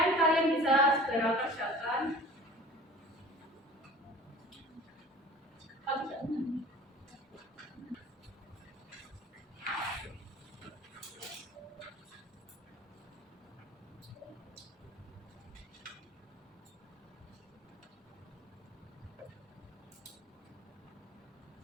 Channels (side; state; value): both; normal; correlation 0.43